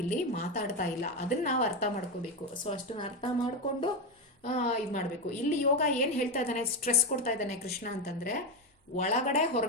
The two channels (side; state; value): both; normal; correlation 0.11